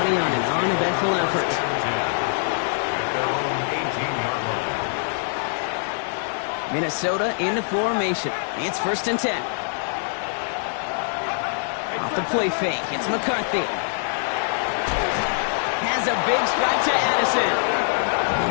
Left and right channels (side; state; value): right; silent; digital silence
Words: on an uneventful effort. Minnesota into formation. It's 1st and 10. Off the play fake, it's McCarthy. Has a big strike to Addison.